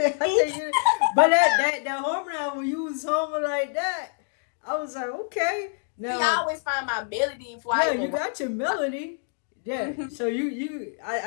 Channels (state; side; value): silent; right; 61 dB below the other